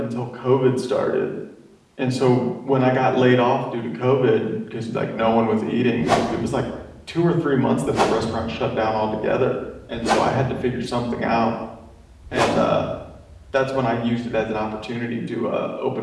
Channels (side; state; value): both; identical; correlation 1.00